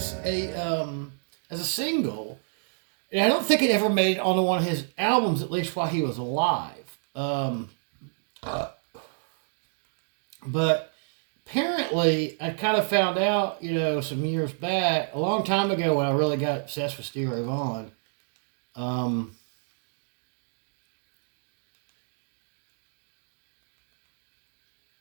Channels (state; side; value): silent; left; digital silence